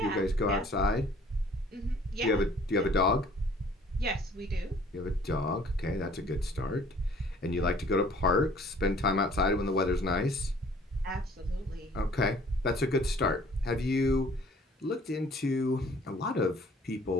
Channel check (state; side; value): normal; both; correlation 0.55